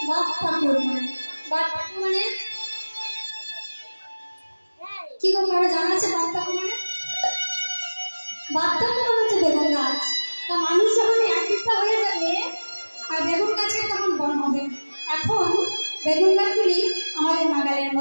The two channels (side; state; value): both; inverted; correlation -1.00